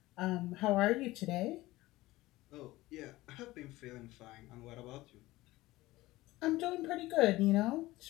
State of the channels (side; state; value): right; quieter; 18.4 dB